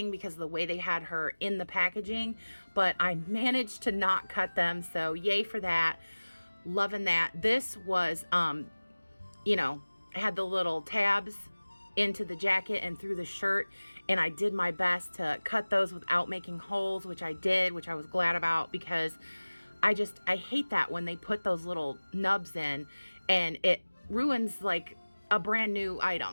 because of the way they had her in the packaging, but I managed to not cut them, so yay for that. Loving that. This was, you know, had the little tabs into the jacket and through the shirt, and I did my best to cut those without making holes, which I did, which I was glad about, because I hate that when they put those little nubs in and it ruins like a brand new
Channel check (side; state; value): both; inverted; correlation -1.00